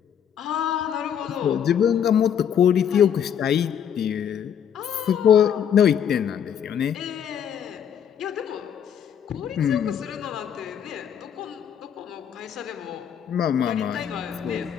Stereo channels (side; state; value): right; quieter; 8.6 dB